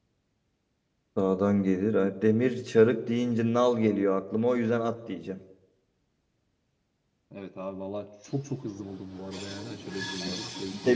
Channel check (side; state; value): both; identical; correlation 1.00